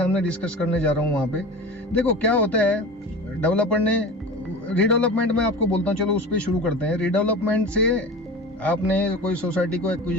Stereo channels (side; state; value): both; normal; correlation 0.33